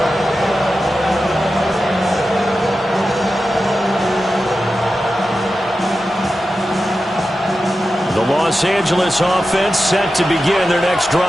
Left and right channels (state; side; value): normal; both; correlation 0.92